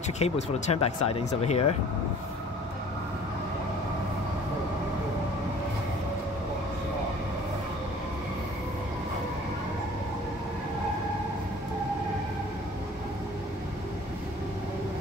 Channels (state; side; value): normal; both; correlation 0.49